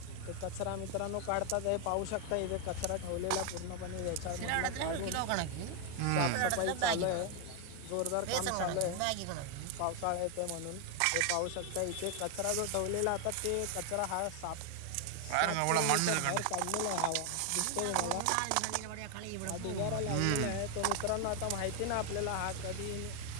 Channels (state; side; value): different; both; correlation 0.01